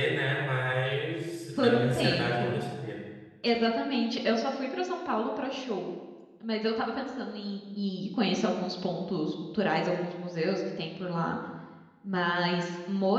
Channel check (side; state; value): both; identical; correlation 1.00